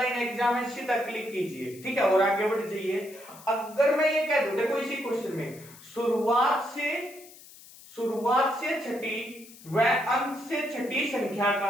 एग्जाम में सीधा क्लिक कीजिए, ठीक है, और आगे बढ़ जाइए। अगर मैं ये कह दूं, देखो इसी क्वेश्चन में शुरुआत से छठी व अंत से छठी संख्या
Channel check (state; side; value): noise; left; hiss, 20 dB below the sound